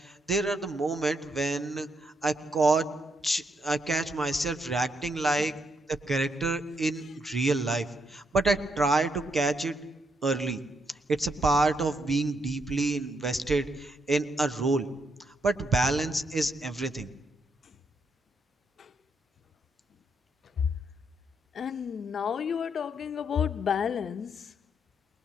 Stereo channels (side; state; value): both; normal; correlation 0.77